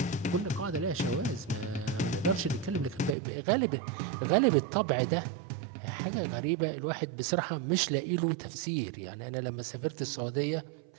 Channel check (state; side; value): drops out; left; at 3.2 s